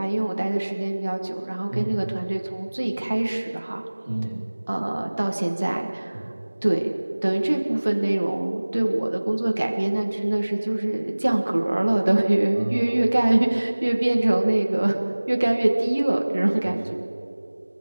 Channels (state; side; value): inverted; both; correlation -1.00